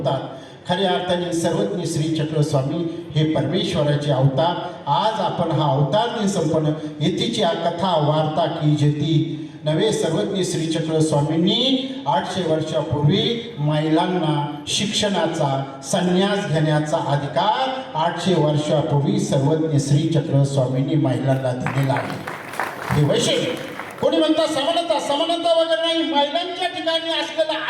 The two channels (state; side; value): identical; both; correlation 1.00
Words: खऱ्या अर्थाने सर्वज्ञ श्री चक्र स्वामी हे परमेश्वराचे अवतार. आज आपण हा अवतार दिन संपन्न येथीची कथा वार्ता की जेती नवे सर्वज्ञ श्री चक्र स्वामींनी 800 वर्षापूर्वी महिलांना शिक्षणाचा संन्यास घेण्याचा अधिकार 800 वर्षापूर्वी सर्वज्ञ श्री चक्र स्वामींनी महिलांना दिलेला आहे. हे वैशिष्ट्य. कोणी म्हणतात समानता वगैरे नाही. महिलांच्या ठिकाणी असलेलं